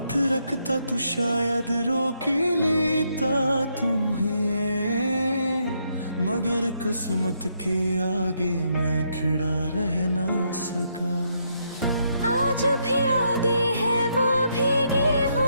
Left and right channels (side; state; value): both; inverted; correlation -0.76